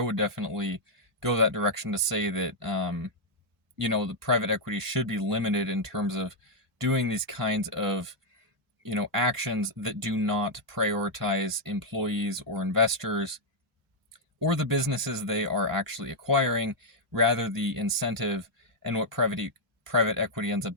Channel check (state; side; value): normal; both; correlation -0.03